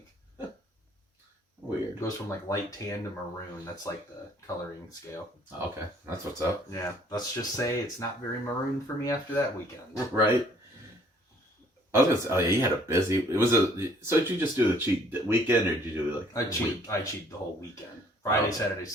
Weird. It goes from like light tan to maroon. That's like the coloring scale. Okay, that's what's up. Yeah, let's just say it's not very maroon for me after that weekend. Right. I was gonna say, oh yeah, you had a busy. It was so did you just do the cheat weekend, or did you do like? I cheat the whole weekend. Friday, Saturday,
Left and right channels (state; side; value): normal; both; correlation 0.60